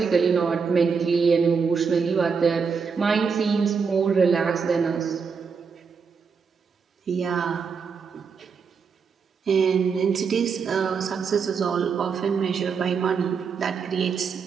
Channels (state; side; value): quieter; left; 5.7 dB